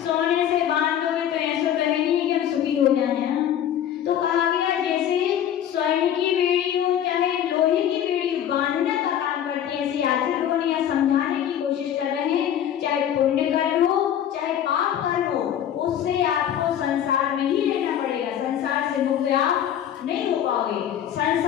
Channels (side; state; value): right; quieter; 10.1 dB